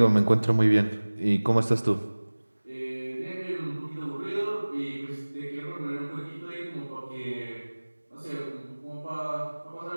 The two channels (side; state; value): both; inverted; correlation -1.00